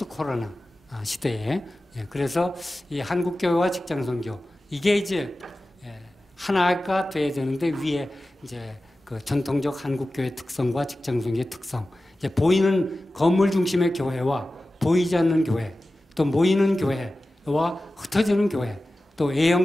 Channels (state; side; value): normal; both; correlation 0.95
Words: 코로나 시대에. 그래서 이 한국 교회와 직장 선교 이게 이제 하나가 돼야 되는데 위에 이제 그 전통적 한국 교회 특성과 직장 선교의 특성. 이제 보이는 건물 중심의 교회와 보이지 않는 교회, 또 모이는 교회와 흩어지는 교회, 또